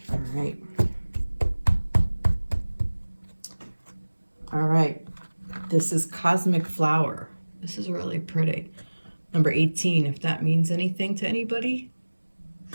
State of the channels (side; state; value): both; inverted; correlation -1.00